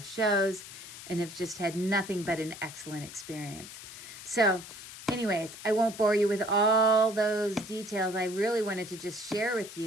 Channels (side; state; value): left; noise; hiss, 14 dB below the sound